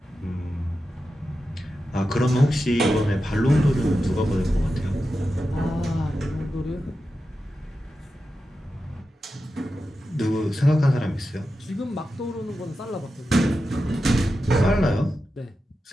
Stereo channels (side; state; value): both; normal; correlation 0.91